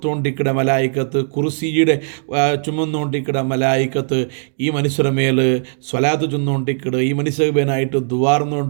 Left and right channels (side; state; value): left; silent; digital silence